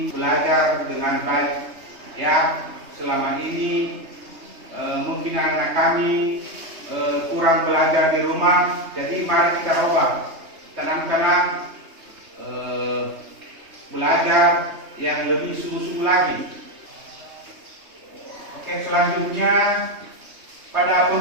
belajar dengan baik. Ya, selama ini mungkin anak kami kurang belajar di rumah, jadi mari kita ubah tanam-tanam belajar yang lebih sungguh-sungguh lagi. Oke, selanjutnya pada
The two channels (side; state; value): left; late; 3.2 ms